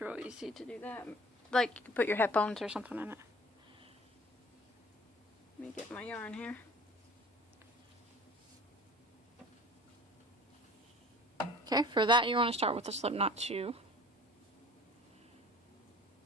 easy to do that. Like, you can put your headphones or something in it. Let me get my yarn here. Okay, for that you want to start with the slipknot 2.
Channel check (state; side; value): normal; both; correlation 0.46